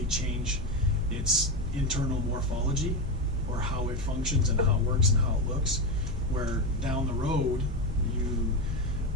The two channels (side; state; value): both; normal; correlation 0.14